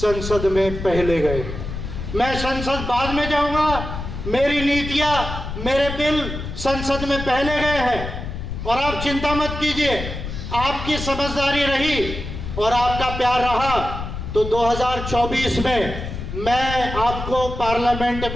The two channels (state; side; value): noise; left; rumble, 7 dB below the sound